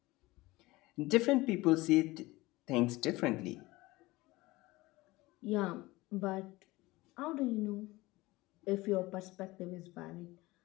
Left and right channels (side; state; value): right; quieter; 20.3 dB